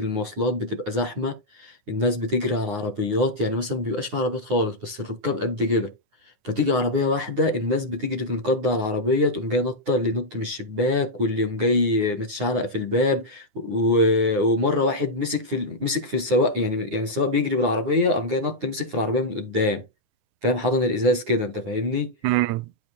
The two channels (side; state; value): left; late; 9.6 ms